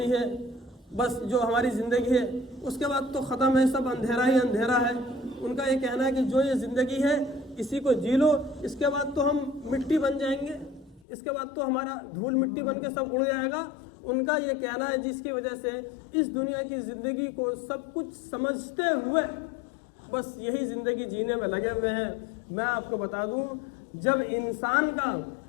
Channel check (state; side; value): drops out; right; at 11.0 s